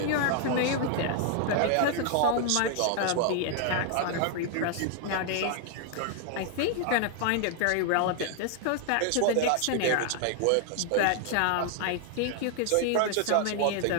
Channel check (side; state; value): both; different; correlation 0.00